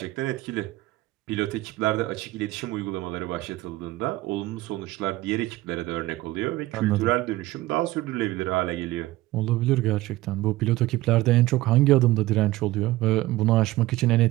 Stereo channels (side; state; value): left; quieter; 17.7 dB